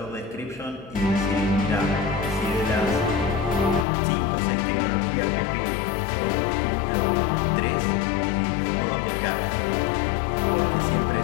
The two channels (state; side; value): drops out; right; at 3.9 s